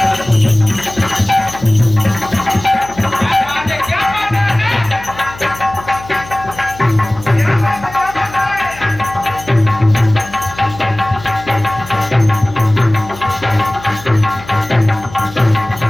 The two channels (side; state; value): left; noise; hum, 17 dB below the sound